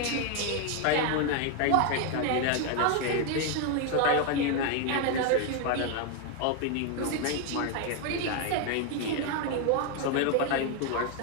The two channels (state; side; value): different; both; correlation 0.01